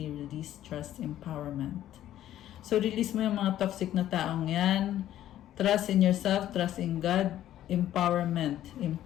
release, trust, empowerment. So, release mo yung mga toxic na taong yan. Trust in yourself, trust in God, empowerment.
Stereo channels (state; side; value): quieter; right; 12.5 dB